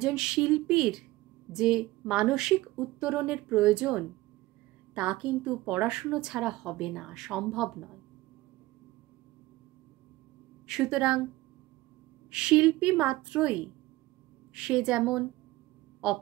শিল্পীর যে মানসিক উত্তরণের প্রয়োজন তা কিন্তু পড়াশুনো ছাড়া হবে না, সম্ভব নয়। সুতরাং শিল্পী মাত্রই সে যেমন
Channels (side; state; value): left; quieter; 18.6 dB